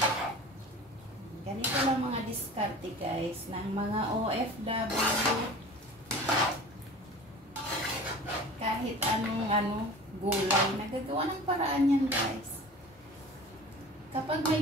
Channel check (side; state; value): both; normal; correlation 0.40